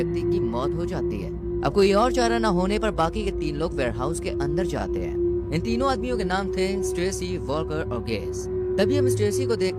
की मौत हो जाती है। अब कोई और चारा न होने पर बाकी के तीन लोग वेयरहाउस के अंदर जाते हैं। इन तीनों आदमियों के नाम थे स्टेसी, वॉकर और गेस। तभी हम स्टेसी को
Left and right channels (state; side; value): identical; both; correlation 1.00